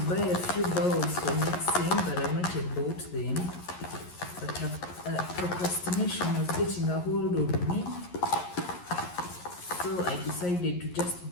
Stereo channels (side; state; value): right; late; 11 ms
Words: buy a few bowls for mixing, but I've not yet bought them. But procrastination was getting a hold of me. So I decided to just